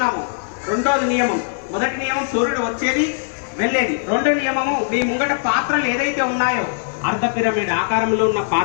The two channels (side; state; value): right; silent; 57 dB below the other